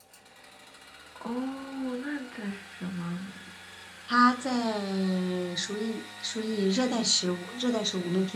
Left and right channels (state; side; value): identical; both; correlation 1.00